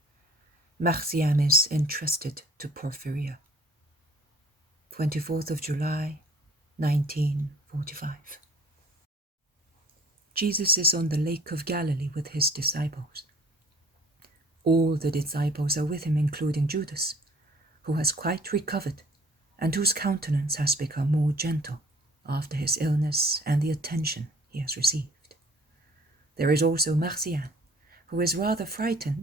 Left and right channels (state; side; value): normal; both; correlation 0.53